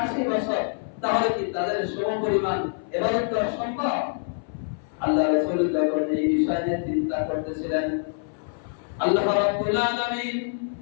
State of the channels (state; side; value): silent; right; 60 dB below the other